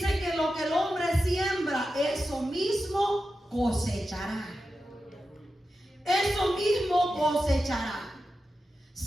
que lo que el hombre siembra, eso mismo cosechará. Eso mismo cosechará.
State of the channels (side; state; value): both; normal; correlation 0.91